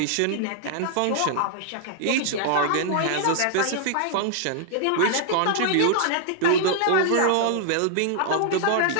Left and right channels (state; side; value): different; both; correlation -0.01